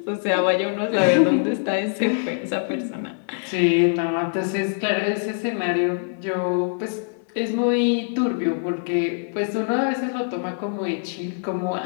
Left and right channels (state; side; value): silent; right; 58 dB below the other